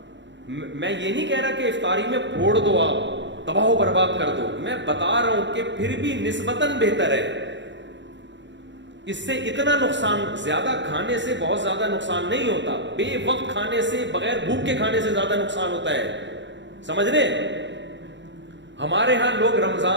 میں یہ نہیں کہہ رہا کہ افطاری میں پھوڑ دو، آپ تباہ و برباد کر دو. میں بتا رہا ہوں کہ پھر بھی نسبتاً بہتر ہے. اس سے اتنا نقصان، زیادہ کھانے سے بہت زیادہ نقصان نہیں ہوتا. بے وقت کھانے سے، بغیر بھوک کے کھانے سے زیادہ نقصان ہوتا ہے. سمجھ رہے؟ ہمارے ہاں لوگ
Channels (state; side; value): late; left; 0.53 ms